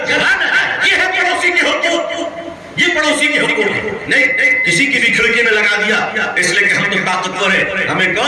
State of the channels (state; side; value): identical; both; correlation 1.00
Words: ہے پڑوسی کے حقوق, یہ پڑوسی کے حقوق ہے. نہیں کسی کی بھی کھڑکی میں لگا دیا اس لیے کہ ہم تو طاقتور ہیں, ہمیں